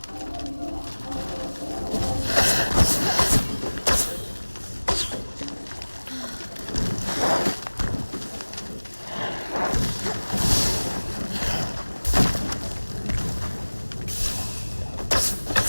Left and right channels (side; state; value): both; inverted; correlation -1.00